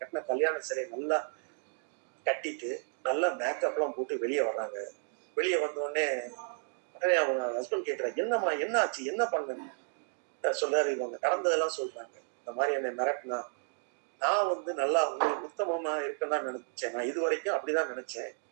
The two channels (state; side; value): silent; left; digital silence